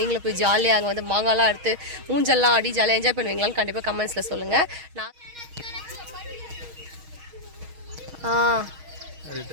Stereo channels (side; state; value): left; late; 6.3 ms